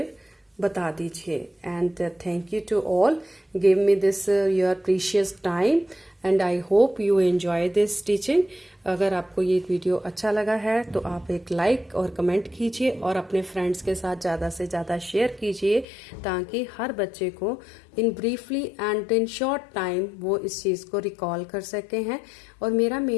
बता दीजिए। And thank you to all, give me this your precious time, and I hope you enjoy this teaching. अगर आपको ये वीडियो अच्छा लगा है तो आप एक लाइक और कमेंट कीजिए, और अपने फ्रेंड्स के साथ ज़्यादा से ज़्यादा शेयर कीजिए, ताकि हर बच्चे को in briefly and in short time वो इस चीज़ को रिकॉल कर सके हैं। और मेरा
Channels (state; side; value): drops out; right; at 15.9 s